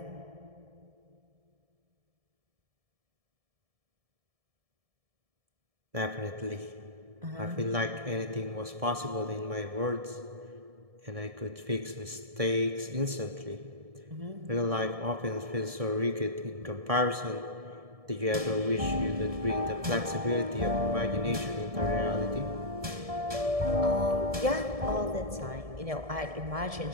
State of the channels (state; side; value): late; left; 1.7 ms